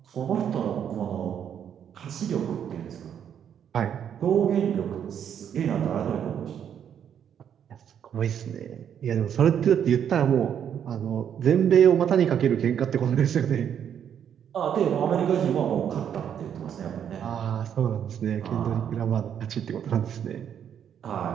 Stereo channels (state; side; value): quieter; left; 8.8 dB